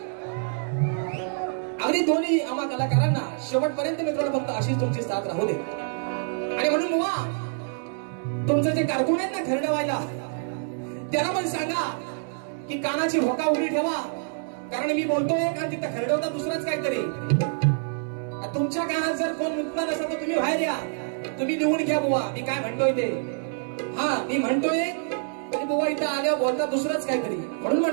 अगदी दोन्ही आम्हा कलाकारांना शेवटपर्यंत मित्रांनो फक्त अशीच तुमची साथ राहू दे आणि म्हणून बुवा तुमचं जे कारकून आहेत ना खरडवायला त्यांना पण सांगा की कानाची भोका उडी ठेवा कारण मी बोलतोय कारण तिथं खरडवता दुसरंच काहीतरी तुमच्या कानात जर कोण मुक्ता नसेल तर तुम्ही बाहेर या तुम्ही निवडून घ्या बुवा मी काय म्हणतोय ते हा मी म्हणतोय आणि बुवा इथं आल्यावर बोलता दुसरंच काहीतरी म्हणून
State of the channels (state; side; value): silent; left; 61 dB below the other